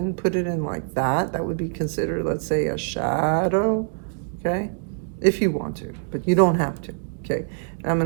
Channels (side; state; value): left; silent; digital silence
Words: like that. That would be considered, let's say, a shadow, okay? If you want to, but you don't have to, okay? And I'm